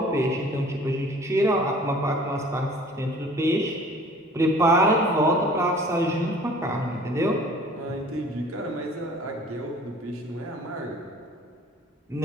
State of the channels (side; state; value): both; normal; correlation 0.49